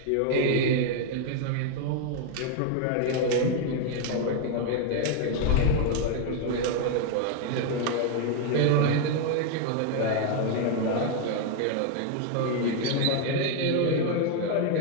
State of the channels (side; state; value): both; different; correlation 0.01